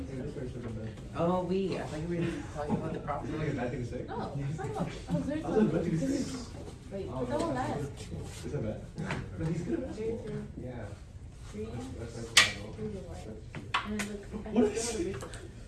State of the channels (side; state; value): both; identical; correlation 1.00